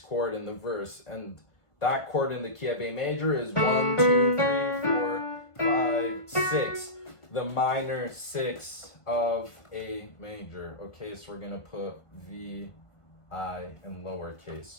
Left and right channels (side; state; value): right; late; 1.5 ms